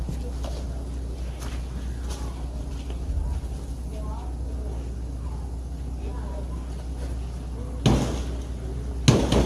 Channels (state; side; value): identical; both; correlation 1.00